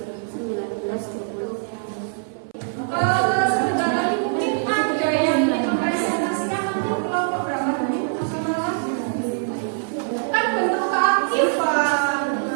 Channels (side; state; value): left; silent; 63 dB below the other